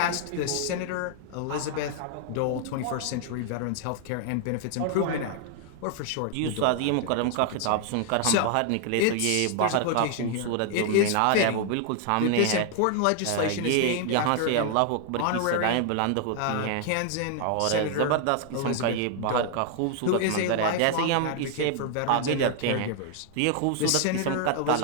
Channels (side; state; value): both; different; correlation 0.00